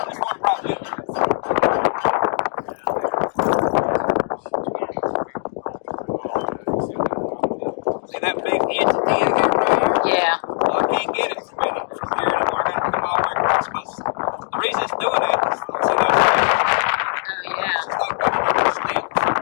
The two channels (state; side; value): silent; right; 65 dB below the other